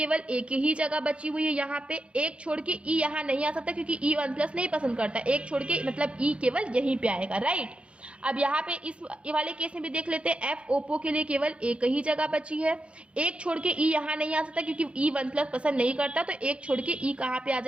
एक ही जगह बची हुई है, यहाँ पे एक छोड़ के ई यहाँ नहीं आ सकता, क्योंकि ई 1 प्लस नहीं पसंद करता, एक छोड़ के मतलब ई केवल यहीं पे आएगा, राइट। अब यहाँ पे इस वाले केस में भी देख लेते हैं, एफ ओप्पो के लिए केवल एक ही जगह बची है, एक छोड़ के ई यहाँ नहीं आ सकता, क्योंकि ई 1 प्लस पसंद नहीं करता, तो एक छोड़ के ई कहाँ पे आ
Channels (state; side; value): late; left; 0.059 ms